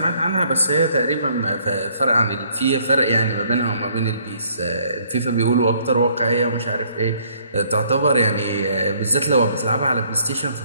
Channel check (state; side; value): inverted; both; correlation -0.64